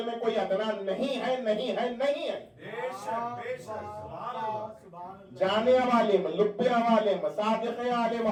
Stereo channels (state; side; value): identical; both; correlation 1.00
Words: में कोई अदना नहीं है, नहीं है, नहीं है। जाने वाले में लुब्बे वाले में सादिक़े आले